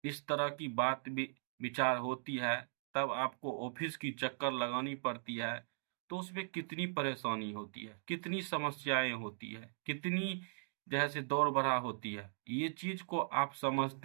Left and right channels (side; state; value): left; silent; digital silence